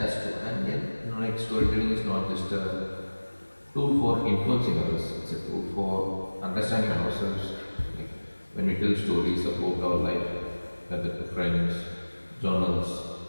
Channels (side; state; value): both; inverted; correlation -1.00